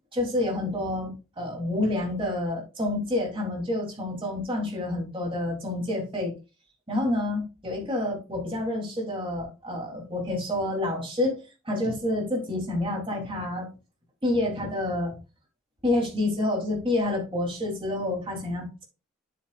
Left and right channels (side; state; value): both; normal; correlation 0.44